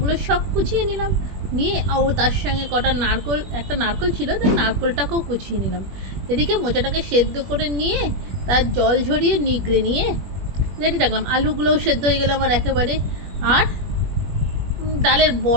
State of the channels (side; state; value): left; late; 21 ms